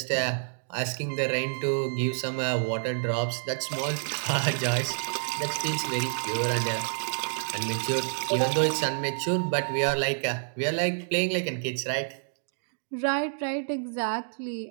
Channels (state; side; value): silent; left; digital silence